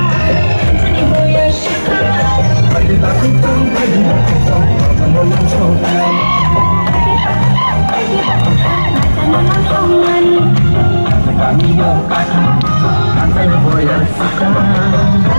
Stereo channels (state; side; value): inverted; both; correlation -1.00